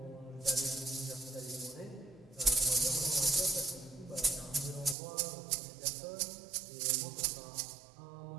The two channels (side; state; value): left; drops out; at 5.0 s